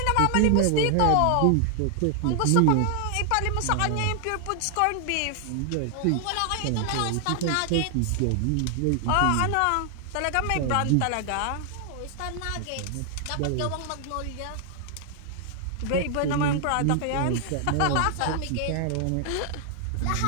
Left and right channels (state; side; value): different; both; correlation 0.00